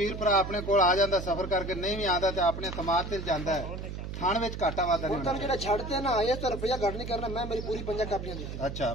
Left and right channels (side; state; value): right; noise; hum, 7 dB below the sound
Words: ਭਰਾ ਆਪਣੇ ਕੋਲ ਆ ਜਾਂਦਾ ਸਫ਼ਰ ਕਰਕੇ ਨਹੀਂ ਵੀ ਆਉਂਦਾ ਤੇ ਆਪਣੇ ਸਮਾਜ ਤੇ ਜਾਂਦਾ ਹੈ ਥਾਣ ਵਿੱਚ ਘਾਟਾ ਵਾਧਾ ਨਹੀਂ ਤੈਨੂੰ ਜਿਹੜਾ ਛੱਡਦੇ ਨਾ ਆਏ ਤਾਂ ਰੁਪਇਆ ਘੱਟ ਨਹੀਂ ਕਰਨਾ ਮੈਂ ਮੇਰੀ ਪੂਰੀ 5 ਕਾਪੀਆਂ ਦਿੱਤੀ ਅੱਛਾ